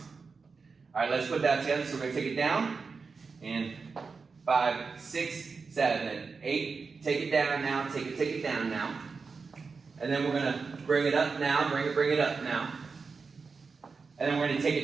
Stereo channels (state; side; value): quieter; left; 4.8 dB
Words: All right, let's put that together. So we're gonna take it down, and 5, 6, 7, 8. Take it down now, take it down now. And then we're gonna bring it up now, bring it up now. And then we're gonna take